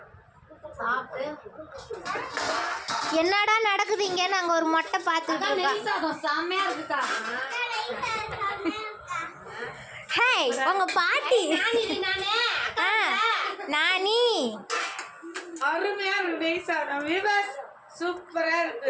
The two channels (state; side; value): identical; both; correlation 1.00